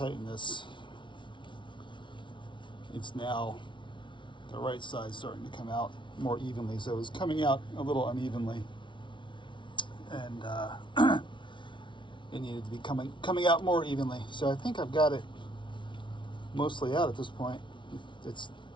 this, it's now the right side starting to come out more evenly. So it was coming out a little unevenly, and it needed to be coming out more evenly. So I think I've got it mostly out at this point. It's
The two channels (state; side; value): late; right; 0.24 ms